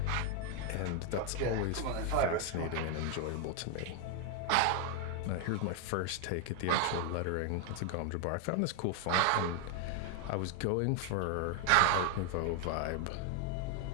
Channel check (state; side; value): different; both; correlation 0.01